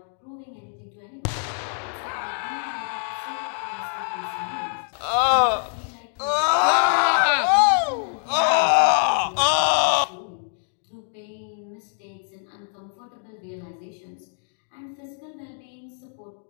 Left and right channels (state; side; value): silent; right; digital silence